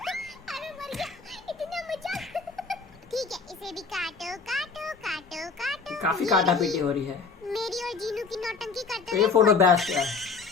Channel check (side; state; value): right; quieter; 4.7 dB